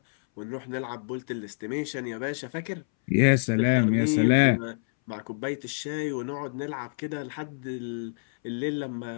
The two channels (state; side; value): silent; right; 60 dB below the other